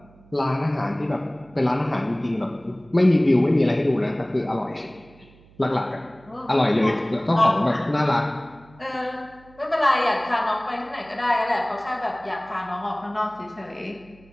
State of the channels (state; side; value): noise; right; hum, 26 dB below the sound